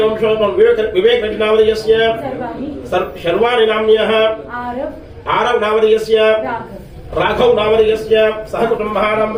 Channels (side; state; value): both; identical; correlation 1.00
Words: वंशोद्भवं विवेक रेड्डी नामधेयस्य शर्वाणि नाम्न्यः आरव नामधेयस्य राघव नामधेयस्य सह कुटुम्बानां